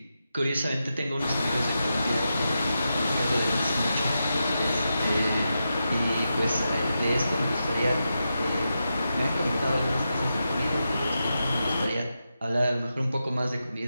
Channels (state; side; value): inverted; both; correlation -0.88